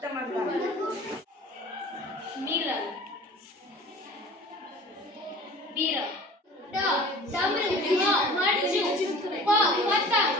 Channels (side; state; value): both; normal; correlation 0.43